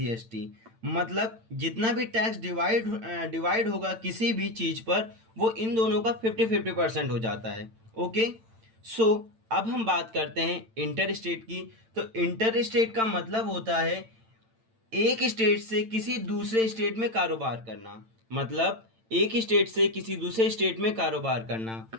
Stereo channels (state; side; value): late; left; 8.9 ms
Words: मतलब जितना भी टैक्स डिवाइड होगा किसी भी चीज पर, वो इन दोनों का 50-50% हो जाता है। ओके, सो अब हम बात करते हैं इंटर स्टेट की। तो इंटर स्टेट का मतलब होता है एक स्टेट से किसी दूसरे स्टेट में कारोबार करना। मतलब एक स्टेट से किसी दूसरे स्टेट में कारोबार करना।